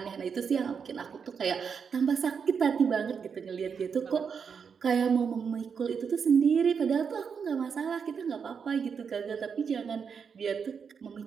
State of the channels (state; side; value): quieter; left; 6.4 dB